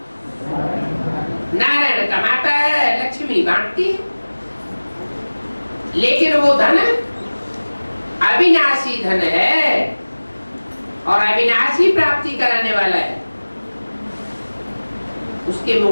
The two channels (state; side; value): inverted; both; correlation -1.00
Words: नारायण कमाता है, लक्ष्मी बांटती है। लेकिन वो धन अविनाशी धन है और अविनाशी प्राप्ति कराने वाला है। उसके